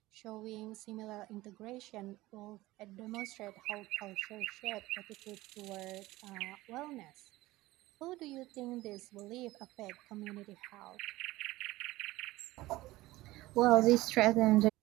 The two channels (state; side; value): quieter; left; 18.3 dB